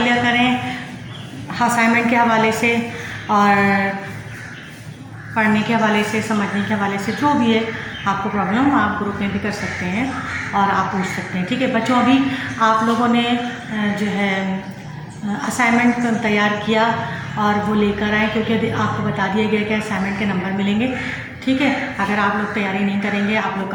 करें असाइनमेंट के हवाले से और पढ़ने के हवाले से, समझने के हवाले से, जो भी है आपको प्रॉब्लम आप ग्रुप में भी कर सकते हैं और आप पूछ सकते हैं। ठीक है बच्चों, अभी आप लोगों ने जो है असाइनमेंट तैयार किया और वो लेकर आए, क्योंकि अभी आपको बता दिया गया कि असाइनमेंट के नंबर मिलेंगे। ठीक है, अगर आप लोग तैयारी नहीं करेंगे, आप लोग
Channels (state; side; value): identical; both; correlation 1.00